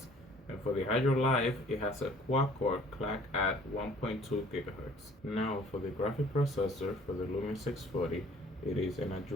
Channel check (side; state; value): both; normal; correlation 0.54